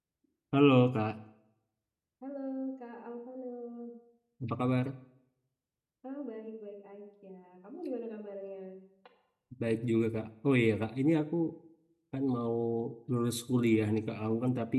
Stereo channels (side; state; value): both; identical; correlation 1.00